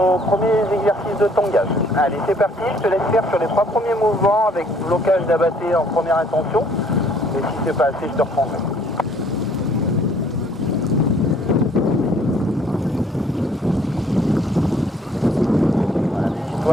premiers exercices de tangage. Allez, c'est parti, je te laisse faire sur les 3 premiers mouvements avec blocage d'abatté en première intention. Et si c'est pas assez, je te reprendrai. Voilà,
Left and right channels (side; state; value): both; normal; correlation 0.61